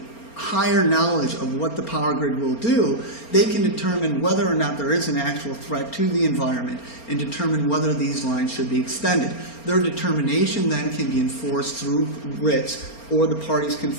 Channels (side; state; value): right; late; 4.3 ms